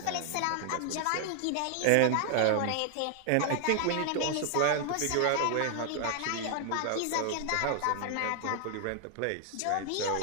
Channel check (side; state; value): both; different; correlation 0.00